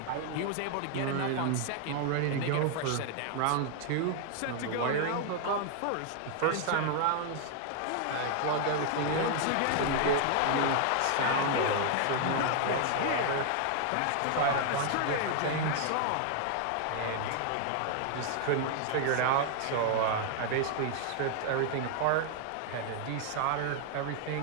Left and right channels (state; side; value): different; both; correlation 0.00